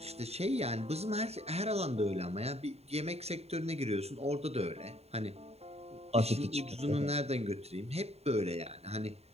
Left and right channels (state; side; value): late; left; 0.30 ms